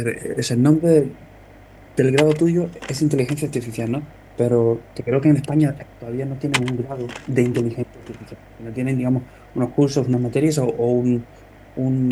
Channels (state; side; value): identical; both; correlation 1.00